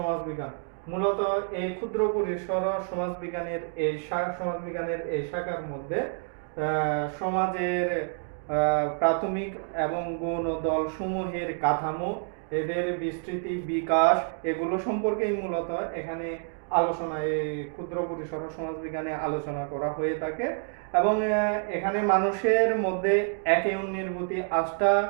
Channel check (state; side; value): silent; left; 59 dB below the other